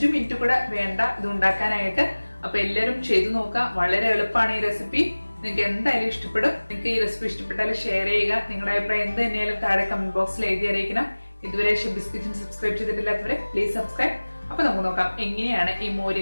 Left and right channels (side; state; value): both; inverted; correlation -1.00